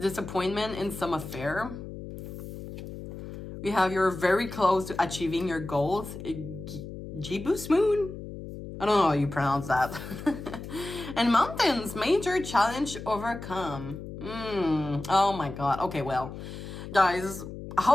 in some affair. We have you're very close to achieving your goals. Jibus Moon? I don't know how you pronounce that. And Mountains, major challenge overcome. Oh my God. Okay, well, guys,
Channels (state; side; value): noise; left; hum, 10 dB below the sound